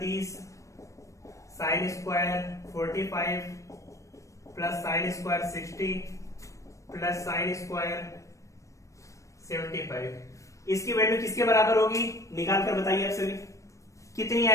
sine square 45 + sign square 60 + sign square 75, इसकी वैल्यू किसके बराबर होगी, निकाल कर बताइए आप सभी, कितनी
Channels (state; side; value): late; right; 0.15 ms